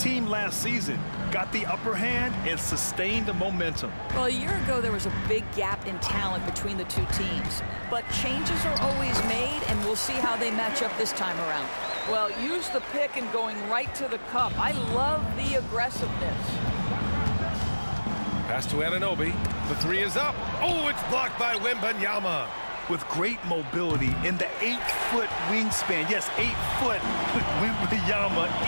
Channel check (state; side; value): inverted; both; correlation -1.00